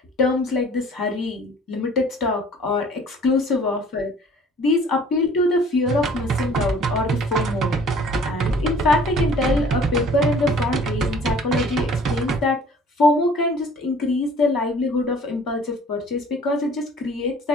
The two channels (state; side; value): normal; both; correlation 0.52